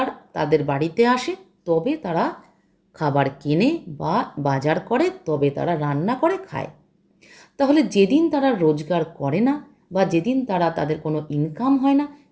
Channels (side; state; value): both; identical; correlation 1.00